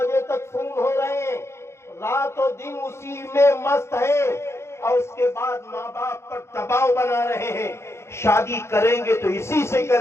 تک فون ہو رہے ہیں، رات و دن اسی میں مست ہے، اور اس کے بعد ماں باپ پر دباؤ بنا رہے ہیں، شادی کریں گے تو اسی سے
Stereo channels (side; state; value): right; late; 0.13 ms